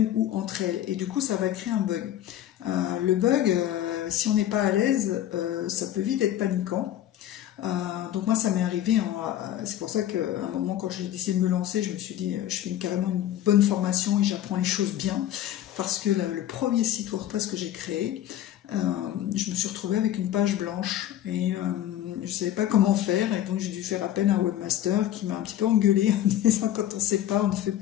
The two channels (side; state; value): right; quieter; 12.1 dB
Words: ou entre elles. Et du coup, ça va créer un bug. Le bug, si on n'est pas à l'aise, ça peut vite être paniquant. Donc moi, ça m'est arrivé. C'est pour ça qu'à un moment, quand j'ai décidé de me lancer, je me suis dit, je fais carrément une bonne formation et j'apprends les choses bien. Parce que le premier site WordPress que j'ai créé, je me suis retrouvée avec une page blanche et je ne savais pas comment faire, et donc j'ai dû faire appel à un webmaster qui m'a un petit peu engueulé en disant quand on ne sait pas, on ne fait